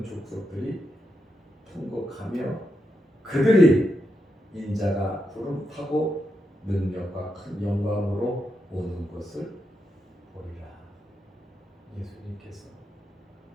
족속들이 통곡하며 그들이 인자가 구름 타고 능력과 큰 영광으로 오는 것을 보리라. 예수님께서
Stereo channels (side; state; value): both; normal; correlation 0.85